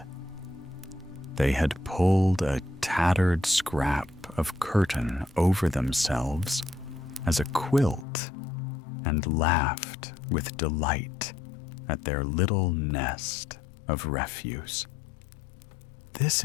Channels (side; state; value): right; drops out; at 8.1 s